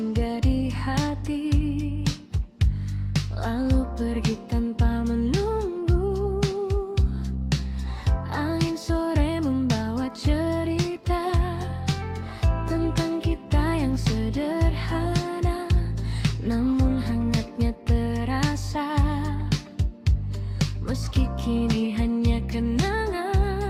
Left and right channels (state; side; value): identical; both; correlation 1.00